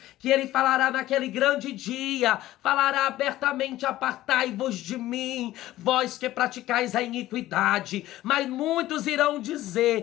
que ele falará naquele grande dia, falará abertamente: apartai-vos de mim, vós que praticais a iniquidade. Mas muitos irão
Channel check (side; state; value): right; quieter; 15.3 dB